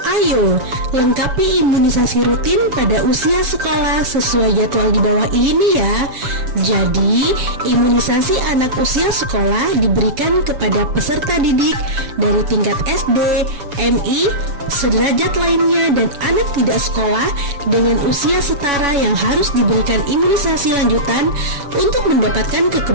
Ayo, lengkapi imunisasi rutin pada usia sekolah sesuai jadwal di bawah ini ya. Jadi, imunisasi anak usia sekolah diberikan kepada peserta didik dari tingkat SD, MI, sederajat lainnya dan anak tidak sekolah dengan usia setara yang harus diberikan imunisasi lanjutan untuk mendapatkan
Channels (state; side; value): late; left; 7.1 ms